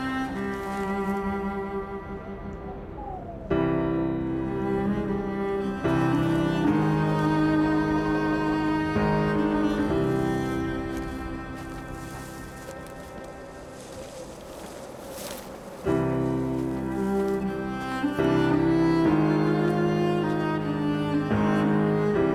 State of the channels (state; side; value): identical; both; correlation 1.00